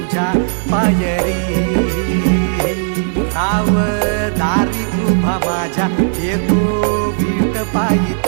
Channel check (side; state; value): left; silent; digital silence